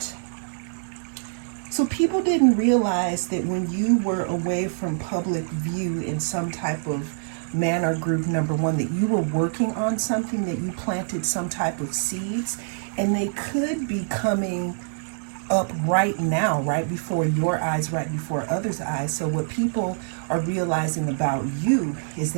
so people didn't realize that when you were away from public view in some type of manner, group number 1, that you were working on something, that you planted some type of seeds, and they could be coming up right now, right before your eyes, right before others' eyes. So what people are realizing about you is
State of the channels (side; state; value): left; silent; digital silence